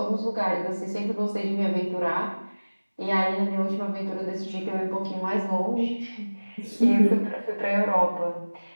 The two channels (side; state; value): both; inverted; correlation -1.00